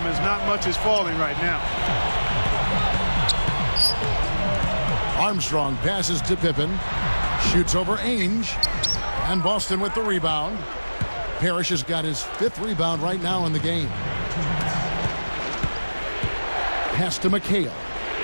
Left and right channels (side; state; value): both; inverted; correlation -1.00